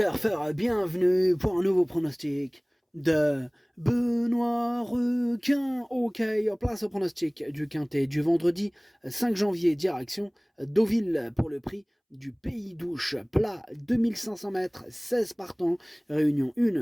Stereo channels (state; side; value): identical; both; correlation 1.00